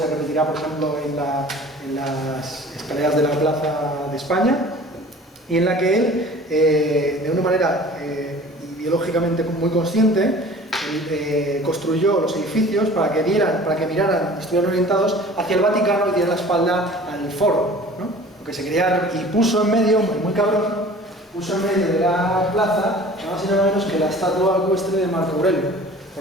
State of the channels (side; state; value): both; normal; correlation 0.45